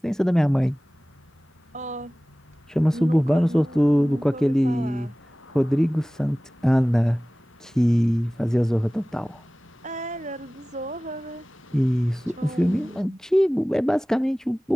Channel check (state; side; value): normal; both; correlation 0.98